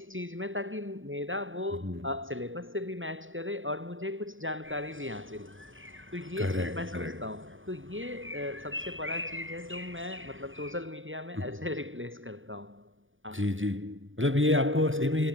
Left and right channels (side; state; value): left; late; 0.57 ms